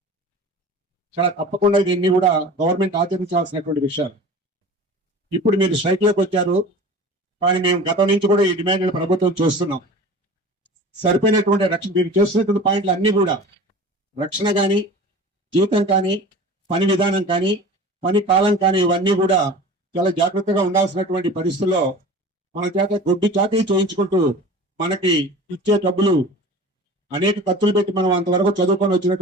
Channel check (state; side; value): normal; both; correlation 0.38